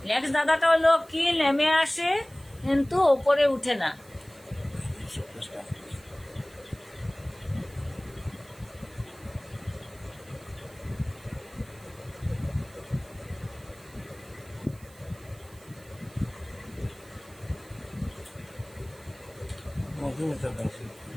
নেক্সট দাদাটা হলো কি নেমে আসে কিন্তু উপরে উঠে না? Madhumita Das.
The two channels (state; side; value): noise; right; hiss, 24 dB below the sound